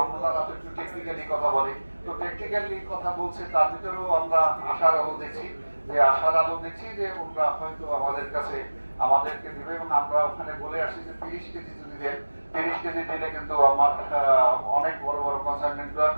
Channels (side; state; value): both; inverted; correlation -1.00